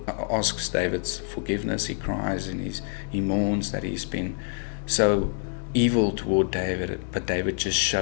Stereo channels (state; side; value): silent; right; 61 dB below the other